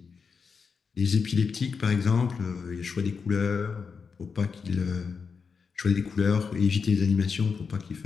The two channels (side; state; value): right; quieter; 5.5 dB